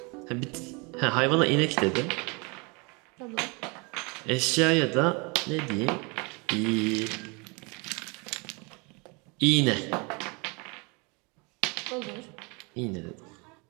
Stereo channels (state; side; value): quieter; left; 30.0 dB